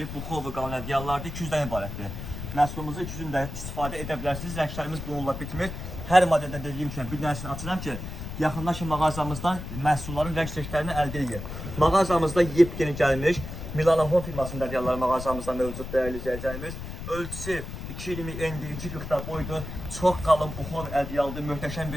buxovi qalın ədyallardır, 200-dən ibarətdir. Məhsulumuzu 200-dən istifadə edə bilərsiniz. Rənglərimiz bununla bitmir. Hər modeldə dediyim kimi bir dənəsini açıram ki, yaxınlaşın mağazamızdan məhsulların rəng çeşidlərini əldə edin. Mağazamızda yepyeni gəlmiş Milano Home firmasının ədyalları mağazamızda mövcud dəyərli izləyicilərimiz. Ölçüsü 220 endi 240 boydur. Çox qalın buxovi ədyaldır, möhtəşəm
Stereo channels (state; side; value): noise; left; rumble, 8 dB below the sound